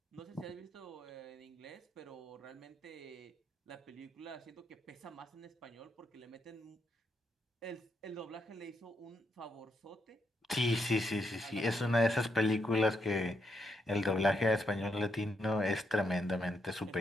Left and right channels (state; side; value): normal; both; correlation 0.79